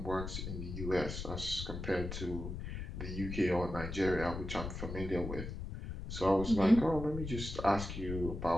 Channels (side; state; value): left; noise; rumble, 6 dB below the sound